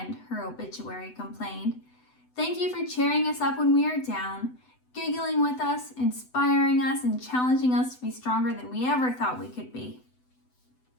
her obituary complained. Thank you for cheering us up when we are down, giggling with us, inspiring us, and challenging us to be stronger than we ever thought we could be.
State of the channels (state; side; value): late; right; 8.0 ms